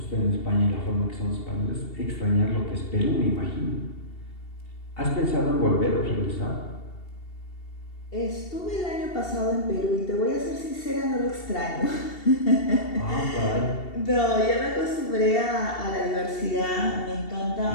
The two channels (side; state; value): right; late; 2.7 ms